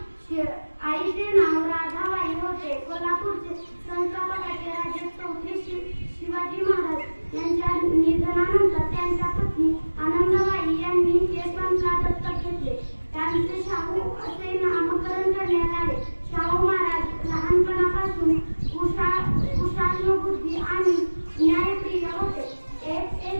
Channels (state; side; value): inverted; both; correlation -1.00